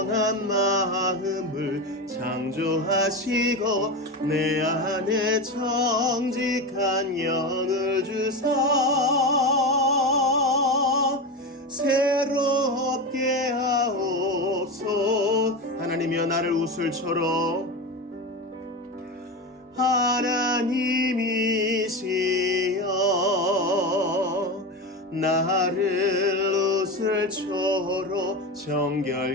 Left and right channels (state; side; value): normal; both; correlation 0.21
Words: 마음을 창조하시고 내 안에 정직한 영을 주사 새롭게 하옵소. 하나님이여 나를 웃을처럼 하나님이시여 나를 웃을초로